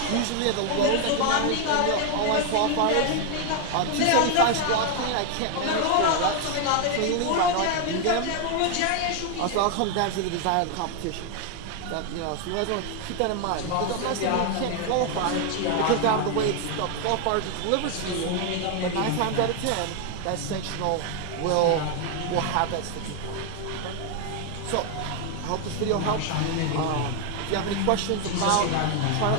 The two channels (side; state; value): both; different; correlation 0.00